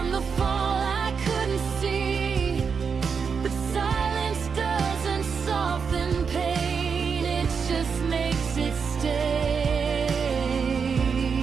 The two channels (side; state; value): left; quieter; 5.9 dB